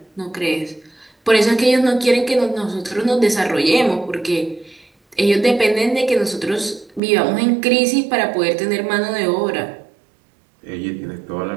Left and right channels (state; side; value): drops out; left; at 7.0 s